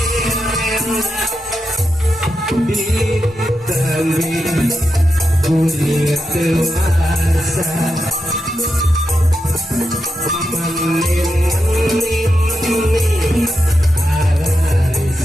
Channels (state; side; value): normal; both; correlation 0.87